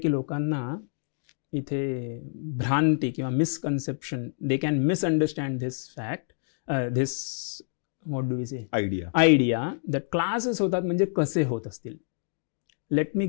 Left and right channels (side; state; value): right; silent; digital silence